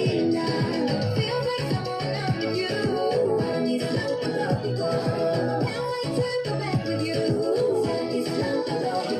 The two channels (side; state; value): both; identical; correlation 1.00